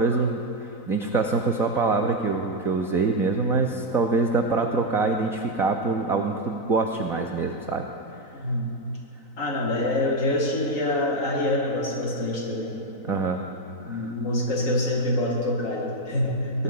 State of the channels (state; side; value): late; right; 4.0 ms